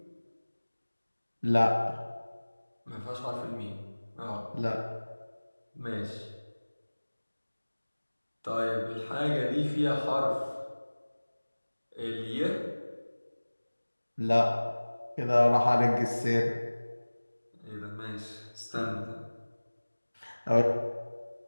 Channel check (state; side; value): inverted; both; correlation -1.00